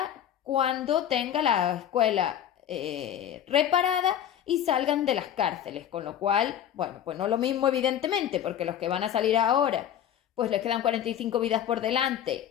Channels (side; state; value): right; quieter; 10.2 dB